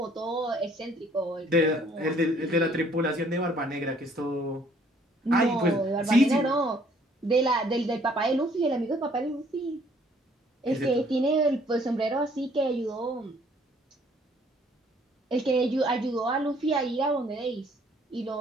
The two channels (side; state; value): both; normal; correlation 0.61